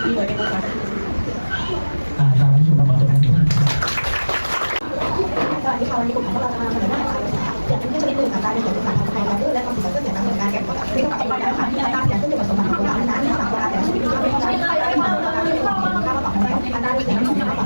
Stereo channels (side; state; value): both; inverted; correlation -1.00